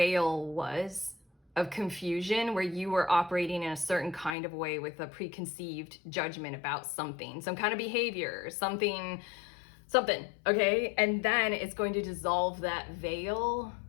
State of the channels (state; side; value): drops out; right; at 4.4 s